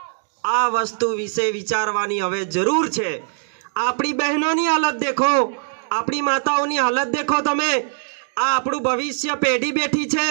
आ वस्तु विषे विचारवानी हवे जरूर छे। आपणी बहनोनी हालत देखो, आपणी माताओनी हालत देखो तमे। आ आपणुं भविष्य पेढ़ी बेठी छे,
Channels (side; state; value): left; silent; digital silence